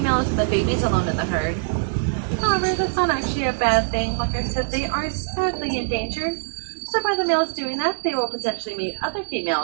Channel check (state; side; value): silent; left; 63 dB below the other